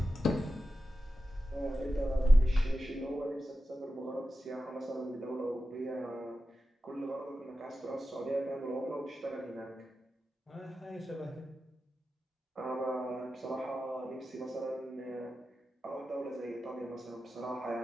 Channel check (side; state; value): both; normal; correlation 0.92